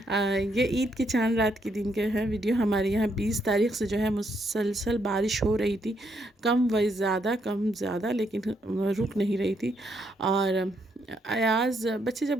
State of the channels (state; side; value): normal; both; correlation 0.75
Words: یہ عید کے چاند رات کے دن کے ہے ویڈیو. ہمارے یہاں 20 تاریخ سے جو ہے مسلسل بارش ہو رہی تھی، کم زیادہ لیکن رک نہیں رہی تھی. اور ایاز بچے